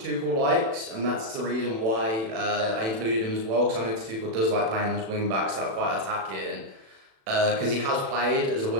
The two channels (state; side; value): late; left; 36 ms